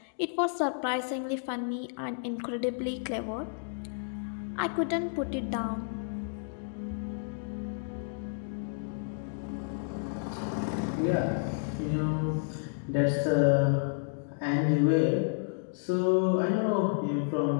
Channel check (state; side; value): silent; right; digital silence